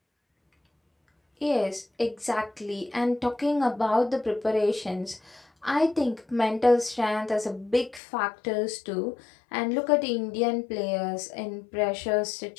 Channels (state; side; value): drops out; right; at 8.0 s